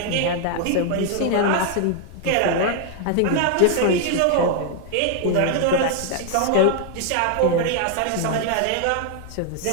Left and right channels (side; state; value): both; different; correlation 0.00